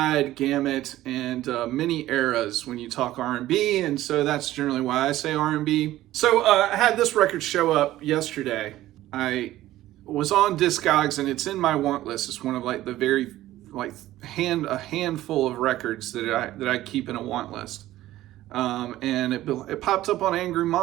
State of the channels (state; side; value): quieter; left; 15.0 dB